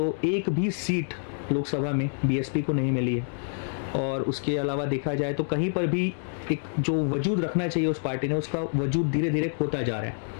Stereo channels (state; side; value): silent; right; digital silence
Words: एक भी सीट लोकसभा में बीएसपी को नहीं मिली है। और उसके अलावा देखा जाए तो कहीं पर भी एक जो वजूद रखना चाहिए उस पार्टी ने, उसका वजूद धीरे धीरे खोता जा रहा